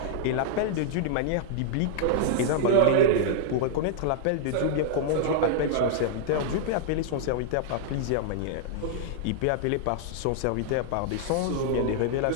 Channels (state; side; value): different; both; correlation -0.01